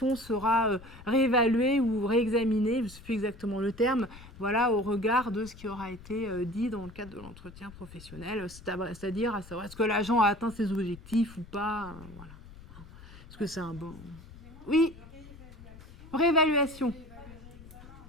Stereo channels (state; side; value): noise; left; rumble, 18 dB below the sound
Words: sera réévaluée ou réexaminée, je ne sais plus exactement le terme, voilà, au regard de ce qui aura été dit dans le cadre de l'entretien professionnel, c'est-à-dire à savoir est-ce que l'agent a atteint ses objectifs ou pas, voilà. Est-ce que c'est un bon... Oui, réévaluation.